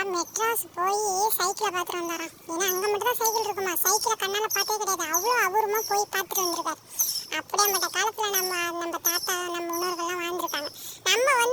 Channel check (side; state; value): both; identical; correlation 1.00